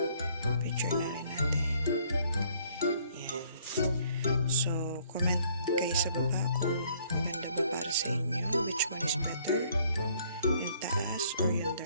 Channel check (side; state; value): both; inverted; correlation -0.62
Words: picture na rin natin. Yan. So, comment kayo sa baba kung maganda ba para sa inyo. Which one is better? Yung taas or yung